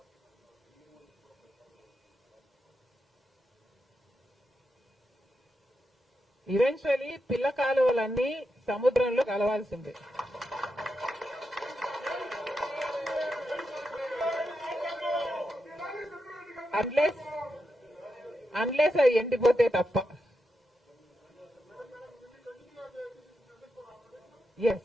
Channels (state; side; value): normal; both; correlation 0.86